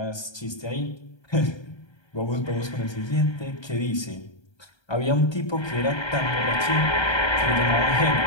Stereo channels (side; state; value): right; late; 1.3 ms